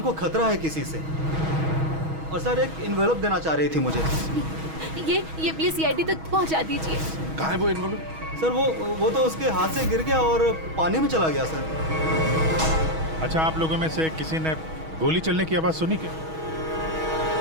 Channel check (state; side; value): late; left; 6.3 ms